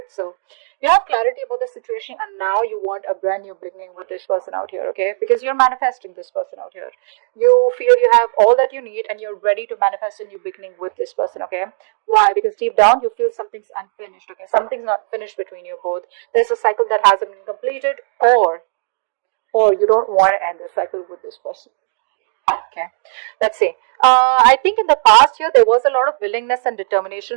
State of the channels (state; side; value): silent; left; digital silence